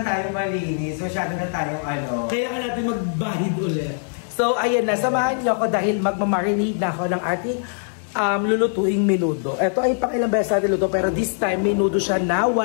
tayo malinis. Masyado na tayong Kaya nga natin magbahid ulit. So, ayan na. Samahan niyo ako dahil magmamarinate na ako ng ating lulutuing menudo. Ito ay pang ilang beses natin luto, pero this time menudo siya na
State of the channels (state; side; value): silent; right; digital silence